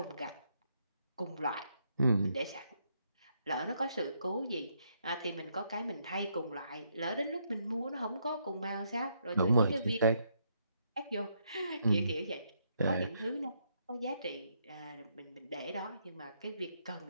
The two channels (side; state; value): both; inverted; correlation -0.75